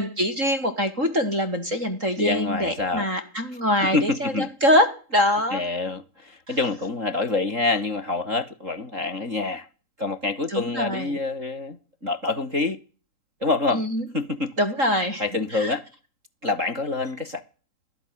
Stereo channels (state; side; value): late; left; 3.8 ms